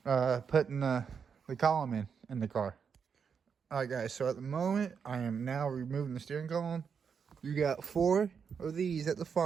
putting the column in the car. Alright guys, so at the moment I am now removing the steering column. You got 4 of these at the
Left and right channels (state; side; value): quieter; left; 6.5 dB